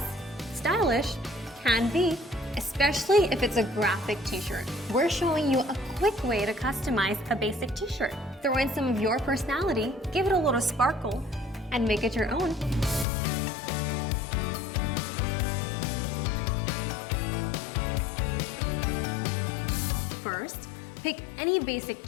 Stylish? Can be. Especially if it's a graphic t-shirt. We're showing you a quick way to customize a basic t-shirt. Throw in some of your personality, give it a little sparkle, and make it your own. First, pick any basic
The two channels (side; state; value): right; drops out; at 13.1 s